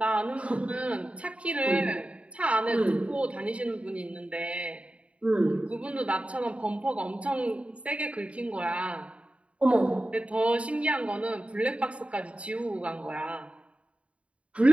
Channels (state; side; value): late; left; 0.062 ms